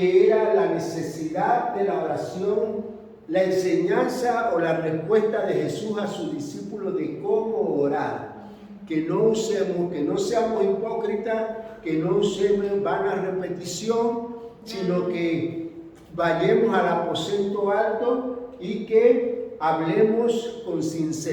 era la necesidad de la oración, la enseñanza o la respuesta de Jesús a sus discípulos de cómo orar. Que no seamos hipócritas, que no usemos vana repetición, sino que vayamos al aposento alto y que hablemos con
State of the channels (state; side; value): identical; both; correlation 1.00